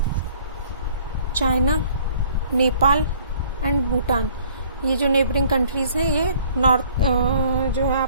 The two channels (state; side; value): inverted; both; correlation -0.55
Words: China, Nepal and Bhutan, ये जो neighbouring countries हैं ये north जो है